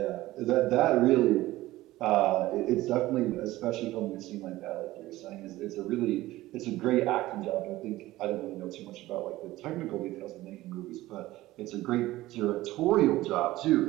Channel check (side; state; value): left; quieter; 17.0 dB